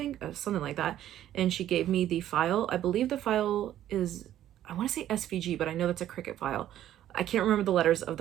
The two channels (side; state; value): left; quieter; 12.1 dB